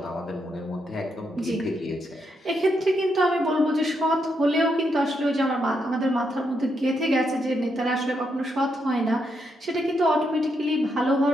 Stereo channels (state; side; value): normal; both; correlation 0.80